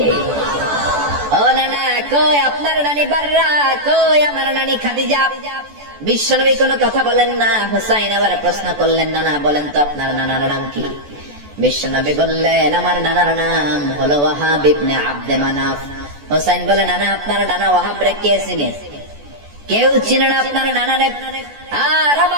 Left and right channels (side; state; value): left; late; 14 ms